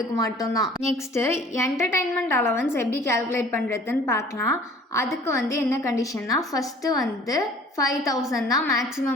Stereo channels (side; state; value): both; normal; correlation 0.50